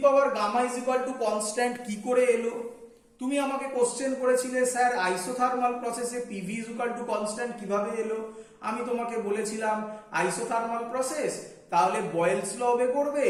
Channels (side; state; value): both; identical; correlation 1.00